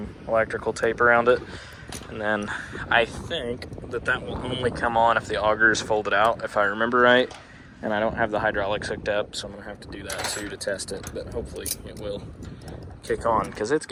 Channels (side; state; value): both; identical; correlation 1.00